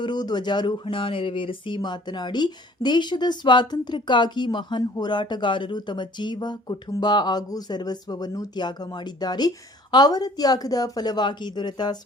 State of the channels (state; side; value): normal; both; correlation 0.54